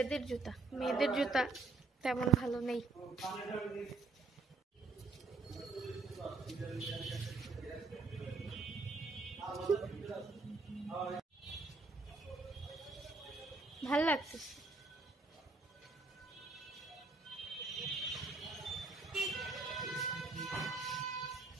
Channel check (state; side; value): quieter; left; 3.7 dB